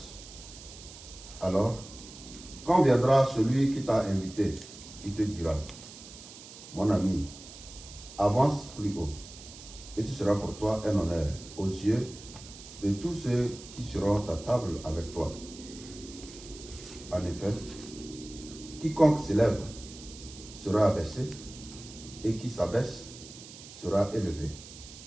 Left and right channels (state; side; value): noise; right; hiss, 16 dB below the sound